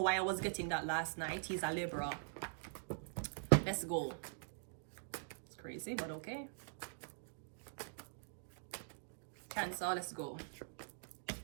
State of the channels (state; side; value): silent; left; digital silence